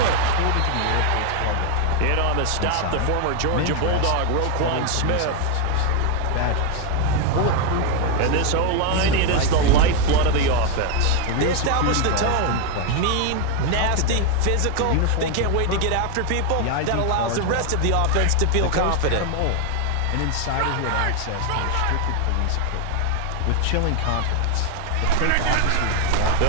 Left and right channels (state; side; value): different; both; correlation 0.01